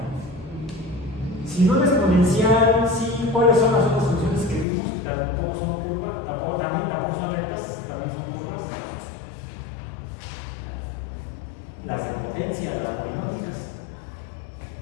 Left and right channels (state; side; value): drops out; right; at 4.7 s